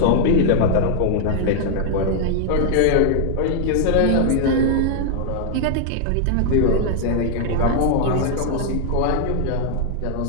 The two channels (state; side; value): different; both; correlation -0.01